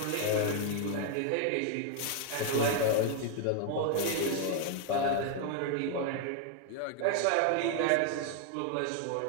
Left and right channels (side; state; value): both; different; correlation 0.00